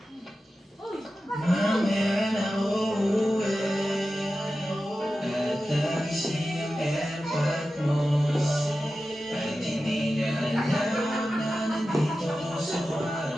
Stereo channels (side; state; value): both; normal; correlation 0.93